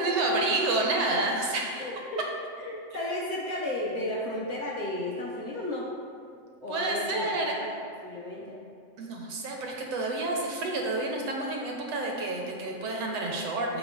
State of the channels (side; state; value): left; late; 7.9 ms